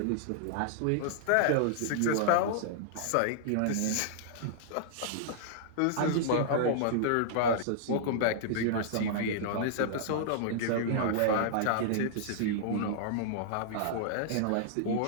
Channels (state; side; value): different; both; correlation -0.02